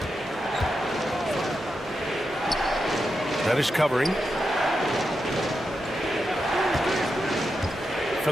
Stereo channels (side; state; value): both; normal; correlation 0.87